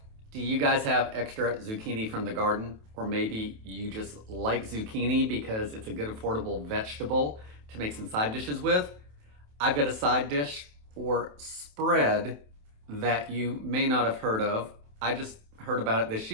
Do you guys have extra zucchini from the garden? Or maybe you just like zucchini because it's a good affordable vegetable to make some side dishes with? I've got a side dish or spread that you may not have heard of. I just heard about it this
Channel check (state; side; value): late; left; 27 ms